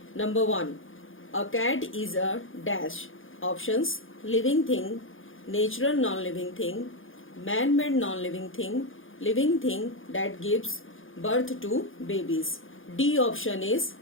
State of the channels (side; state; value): right; late; 0.58 ms